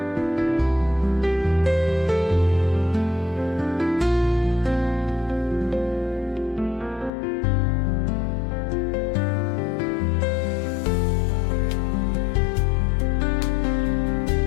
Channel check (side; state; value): right; drops out; at 7.1 s